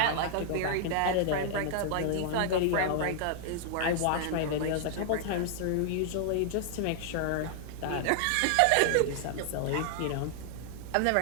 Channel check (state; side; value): different; both; correlation 0.00